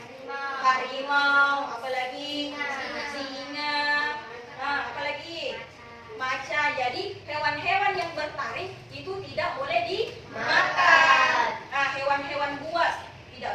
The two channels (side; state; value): both; identical; correlation 1.00